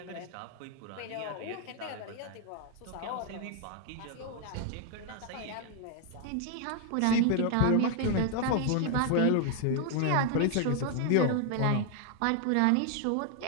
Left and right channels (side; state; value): both; different; correlation 0.00